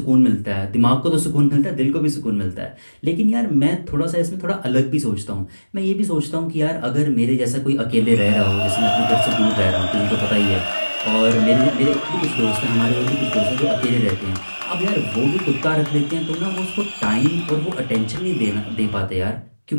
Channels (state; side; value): inverted; both; correlation -1.00